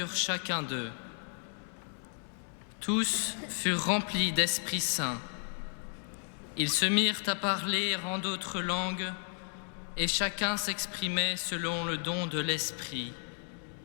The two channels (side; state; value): right; silent; 56 dB below the other